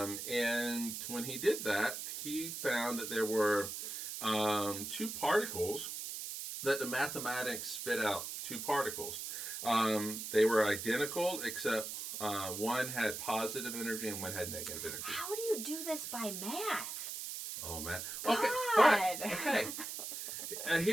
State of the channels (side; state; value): right; noise; hiss, 6 dB below the sound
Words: when he did that, he found that there were two particles that the mathematics spit out, two particles. They were identical, except one had positive energy and one had negative energy. How do you do this by math? Oh, man. God. Okay, but, okay.